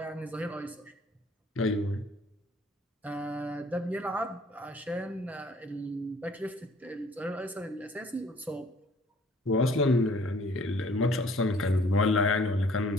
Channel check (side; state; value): both; normal; correlation 0.57